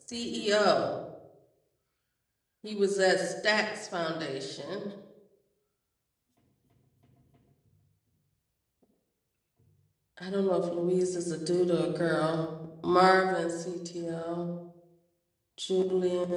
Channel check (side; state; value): both; identical; correlation 1.00